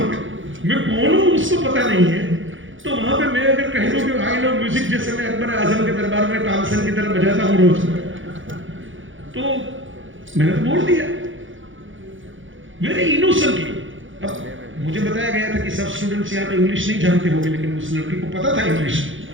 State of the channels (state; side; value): late; left; 0.57 ms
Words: पे मैं कौन हूं उसको पता नहीं है। तो वहां पे मैं अगर कह दूं कि आई लव म्यूजिक, जैसे मैं अकबर आजम के दरबार में तानसेन की तरह बजाता हूं रोज, तो मैंने तो बोल दिया वेरी इनोसेंटली। अब मुझे बताया गया था कि सब स्टूडेंट्स यहाँ पे इंग्लिश नहीं जानते होंगे, लेकिन उस लड़की को पता था इंग्लिश।